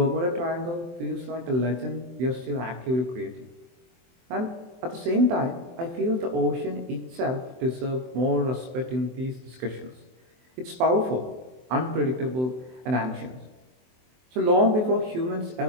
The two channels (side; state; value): left; late; 23 ms